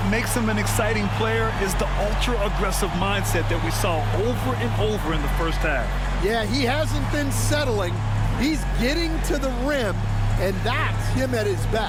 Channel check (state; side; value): identical; both; correlation 1.00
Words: makes him an exciting player is the ultra-aggressive mindset that we saw over and over in the first half. Yeah, he hasn't been settling. He's getting to the rim, and that's him at his